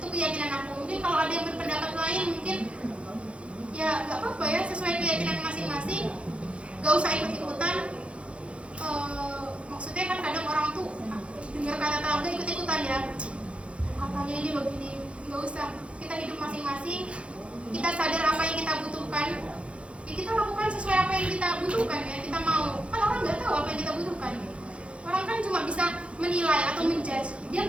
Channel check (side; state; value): left; late; 0.060 ms